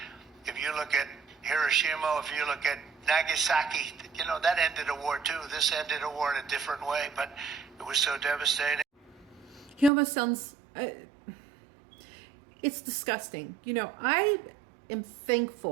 If you look at Hiroshima, if you look at Nagasaki, you know, that ended a war too. This ended a war in a different way, but it was so devastating. He almost sounds... it's disgusting. You know, I am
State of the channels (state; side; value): drops out; left; at 9.9 s